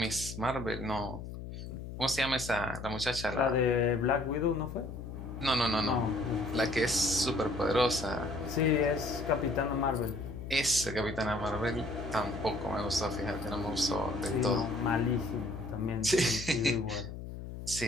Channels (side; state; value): left; noise; hum, 9 dB below the sound